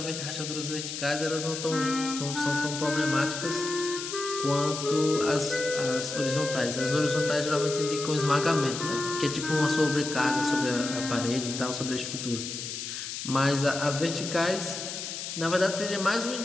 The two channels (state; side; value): noise; left; hiss, 6 dB below the sound